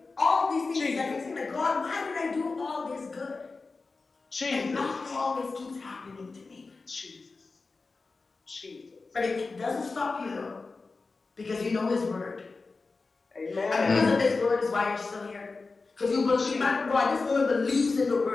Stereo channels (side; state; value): right; quieter; 4.0 dB